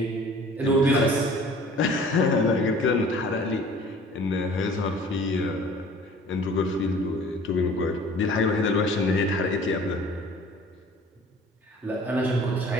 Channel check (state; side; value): normal; both; correlation 0.49